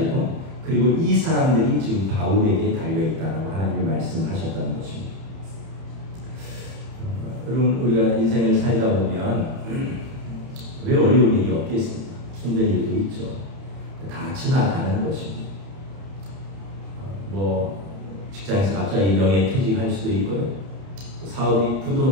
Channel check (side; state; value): left; late; 30 ms